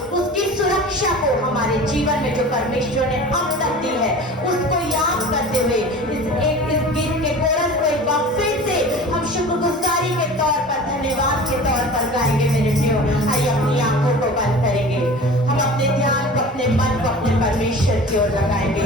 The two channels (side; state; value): both; normal; correlation 0.38